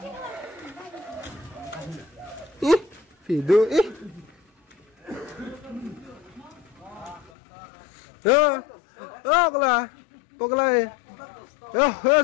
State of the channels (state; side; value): drops out; right; at 7.3 s